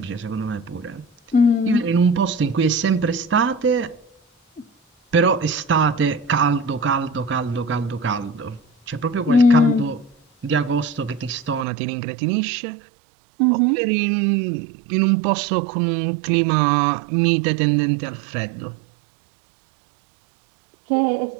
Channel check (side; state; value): left; drops out; at 11.7 s